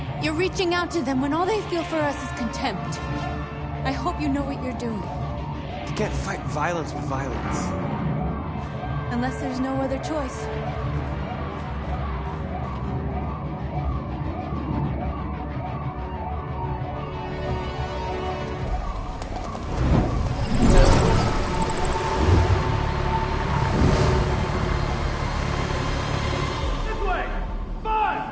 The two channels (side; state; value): both; identical; correlation 1.00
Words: You're reaching out to them when all they feel for us is contempt. I hope you know what you're doing. You can't fight violence with violence. Unless there's no other choice.